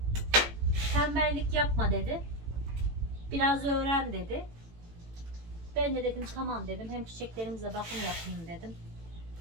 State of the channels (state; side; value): late; left; 18 ms